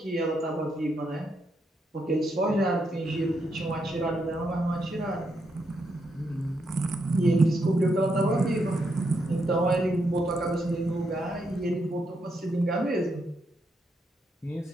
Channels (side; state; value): both; normal; correlation 0.80